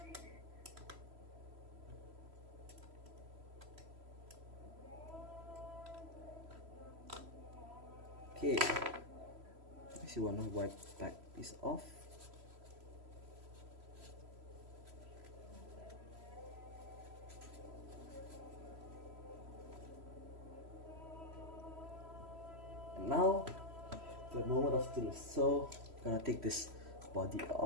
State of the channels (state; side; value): late; left; 3.0 ms